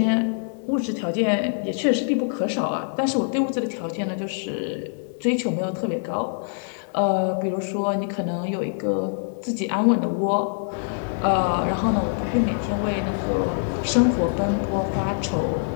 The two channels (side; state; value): right; silent; digital silence